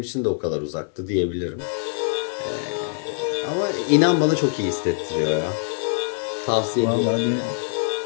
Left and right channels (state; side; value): silent; right; 56 dB below the other